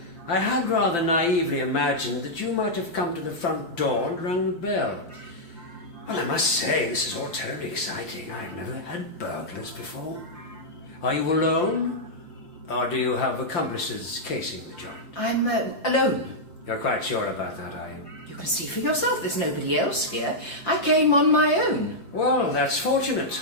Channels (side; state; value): right; late; 5.8 ms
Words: I had rather naively imagined that you might have come to the front door and rung the bell. Well, I must say, this is all terribly exciting. I've never had burglars before. Are you alone? Or do you have accomplices casing the joint? I'm alone. You're quite sure about that, are you? You can see for yourself there's nobody else here. I came on my own. Well, that's fortunate.